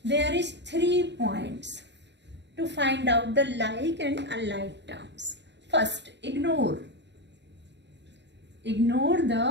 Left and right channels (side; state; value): left; late; 0.51 ms